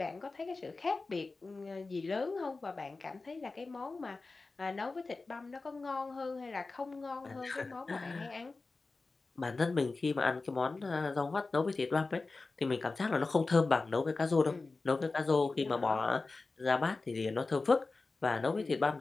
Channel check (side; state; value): right; quieter; 3.7 dB